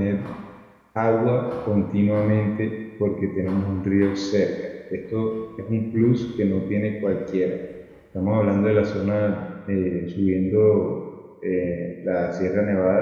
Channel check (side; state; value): both; identical; correlation 1.00